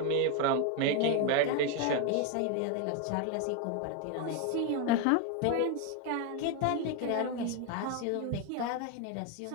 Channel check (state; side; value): different; both; correlation 0.02